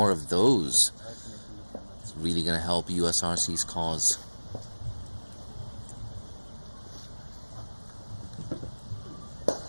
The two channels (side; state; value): both; inverted; correlation -1.00